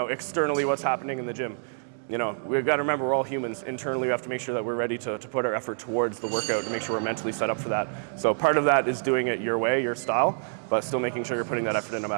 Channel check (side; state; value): left; silent; digital silence